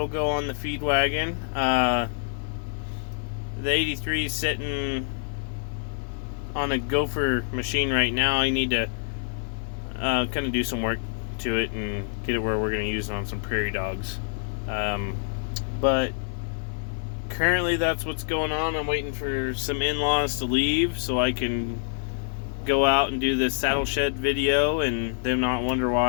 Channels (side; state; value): right; silent; 58 dB below the other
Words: go on the feed wagon. The 83 is sitting on a Gopher machine right now. I need to kind of do some work to it and get it where we're going to use it on some prairie dogs. But currently that's what's going on. I'm waiting for some in-laws to leave so I can go out and do this saddle shed video and them not wonder